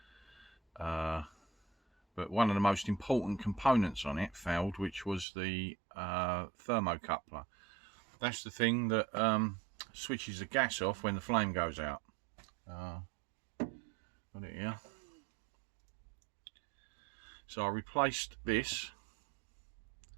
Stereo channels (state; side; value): drops out; left; at 5.2 s